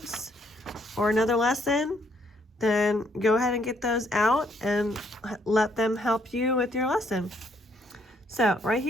or another lesson, then go ahead and get those out and let them help you with your lesson. So right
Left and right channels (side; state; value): both; normal; correlation 0.69